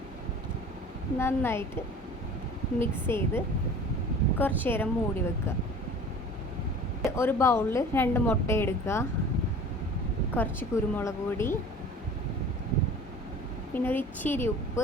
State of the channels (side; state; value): both; normal; correlation 0.43